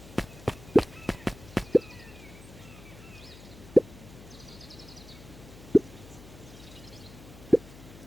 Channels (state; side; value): noise; left; hum, 18 dB below the sound